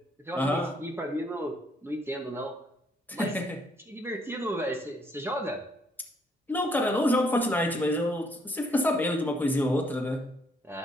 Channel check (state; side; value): normal; both; correlation 0.70